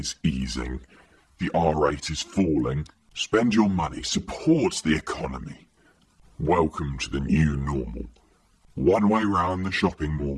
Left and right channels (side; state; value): both; identical; correlation 1.00